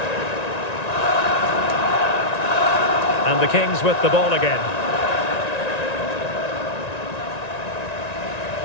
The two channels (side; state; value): right; late; 1.9 ms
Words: And the Kings with the ball again.